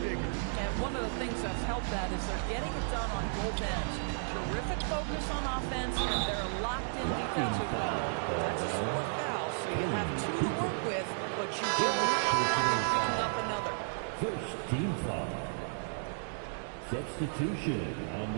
bigger. And one of the things that's helped that is they're getting it done on both ends. Terrific focus on offense, and they're locked in defensively. That's a sport foul, so you have 2 to work with, but you do not want them picking up another. First team foul. Substitution on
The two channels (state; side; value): silent; left; digital silence